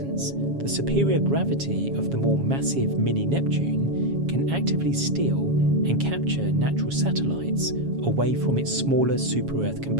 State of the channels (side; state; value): left; late; 7.3 ms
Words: the superior gravity of the more massive mini-Neptune can actively steal and capture natural satellites away from its smaller super-Earth